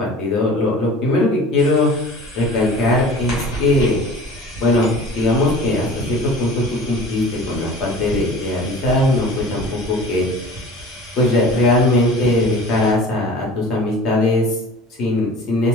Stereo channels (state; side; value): normal; both; correlation 0.42